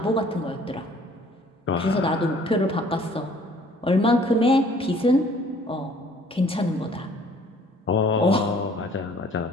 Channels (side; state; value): both; normal; correlation 0.56